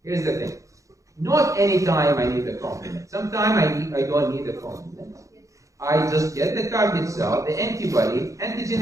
Here's the thing. Not any time I need the complement. Sometimes I don't need the complement. I just get the target cell, the antibody. Antigen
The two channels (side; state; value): left; late; 0.15 ms